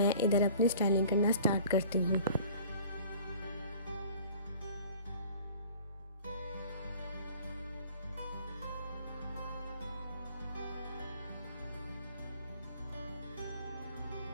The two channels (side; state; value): both; inverted; correlation -0.48